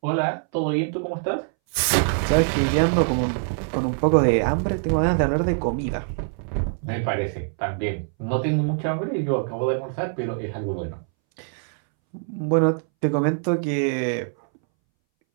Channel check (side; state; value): left; silent; 62 dB below the other